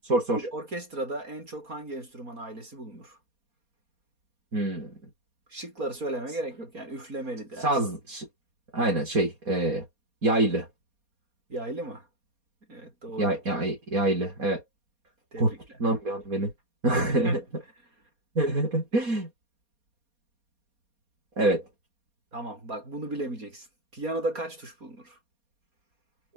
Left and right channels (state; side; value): late; left; 4.2 ms